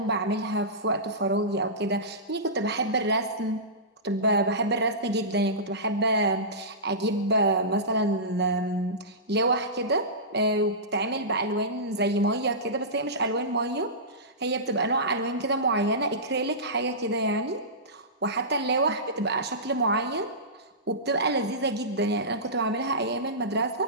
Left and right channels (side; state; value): both; normal; correlation -0.20